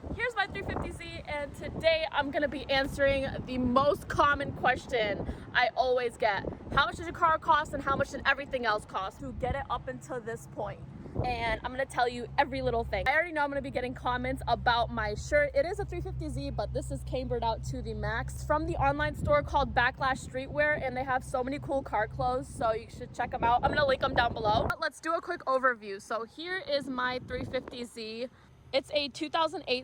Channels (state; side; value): identical; both; correlation 1.00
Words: Here's my 350Z, and today I'm gonna be answering the most common question I always get. How much does your car cost and how much did everything else cost to get it up until this point? And I'm gonna tell you every little thing. I already know I'm gonna be getting comments about my shirt. It is a 350Z, but this is cambered out to the max from the online store called Backlash Streetwear, and they have so many cool car clothes, so you should check them out. I'm gonna link them down below. But let's do a quick overview. So here is my 350Z. It's a